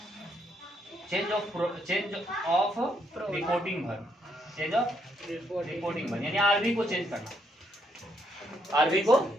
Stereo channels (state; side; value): normal; both; correlation 0.74